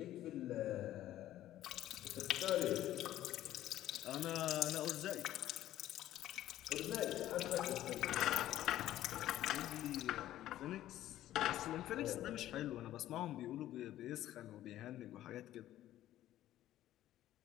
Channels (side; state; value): right; quieter; 13.5 dB